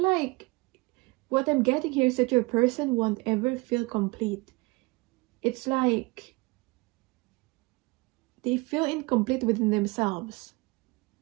like what I'm getting here is that your person won't ever feel complete. It's like they feel incomplete within themselves.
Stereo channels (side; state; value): left; quieter; 25.2 dB